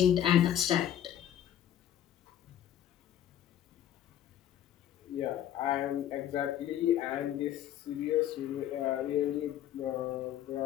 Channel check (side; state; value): right; quieter; 11.0 dB